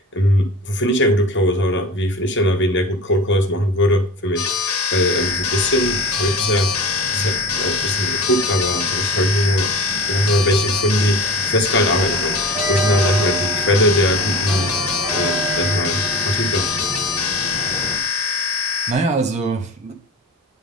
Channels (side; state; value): both; normal; correlation 0.35